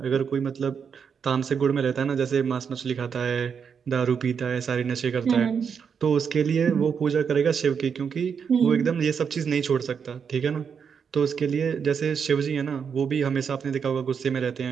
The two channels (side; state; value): left; quieter; 6.7 dB